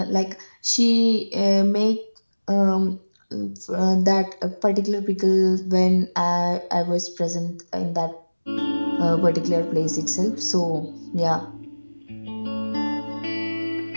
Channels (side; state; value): both; inverted; correlation -1.00